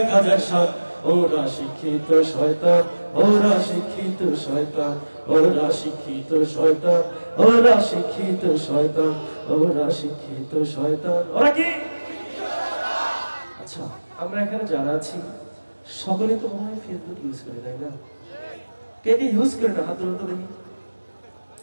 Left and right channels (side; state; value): both; inverted; correlation -1.00